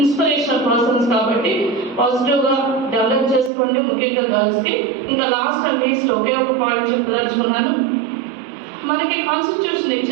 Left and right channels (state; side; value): drops out; left; at 3.5 s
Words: పర్సన్స్ కాబట్టి పాజిటివ్ గా డెవలప్ చేసుకోండి, ముఖ్యంగా గర్ల్స్ కి. ఇంకా లాస్ట్ అండ్ లీస్ట్ ఒకే ఒక పాయింట్ చెప్పదలుచుకున్నాను. మనకి కాన్స్టిట్యూషన్